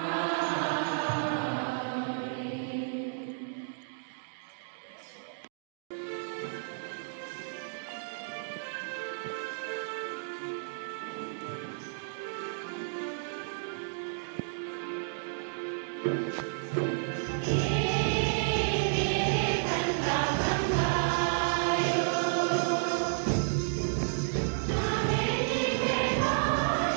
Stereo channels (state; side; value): silent; left; digital silence